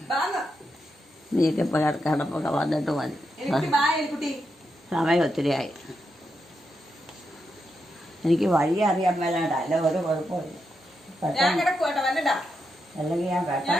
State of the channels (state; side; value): normal; both; correlation 0.84